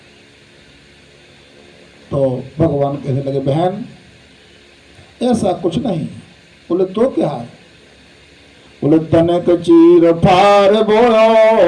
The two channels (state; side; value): identical; both; correlation 1.00